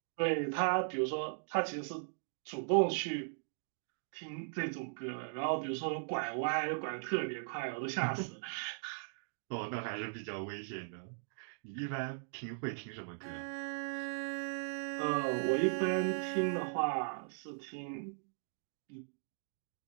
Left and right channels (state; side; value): silent; left; digital silence